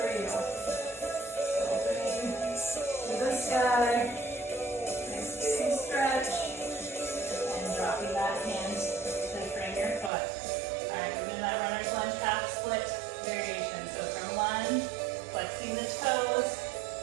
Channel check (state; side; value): drops out; left; at 10.1 s